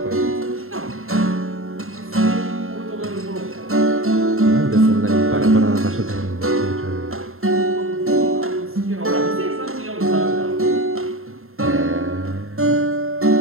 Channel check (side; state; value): left; late; 0.61 ms